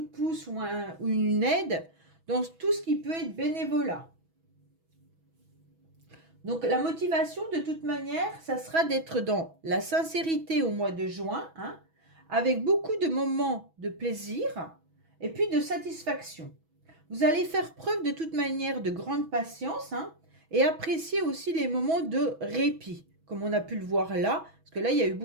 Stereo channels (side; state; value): left; late; 6.1 ms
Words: pouce ou une aide dans tout ce qui peut être bénévolat. Donc, la motivation, de toute manière, ça sera d'être dans la sincérité au mois de juin, hein, avec beaucoup de moments de plaisir et puis de satisfaction. Vous allez faire preuve de toute manière de grande patience hein, et apprécier aussi les moments de répit. comme on a pu le voir là, parce que là, il y a eu